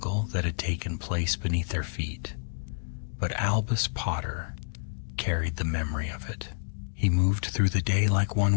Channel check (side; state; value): right; silent; digital silence